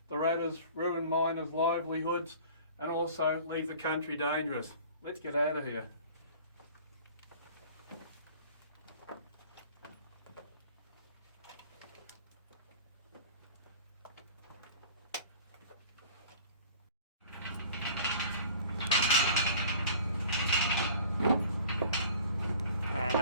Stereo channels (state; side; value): inverted; both; correlation -0.46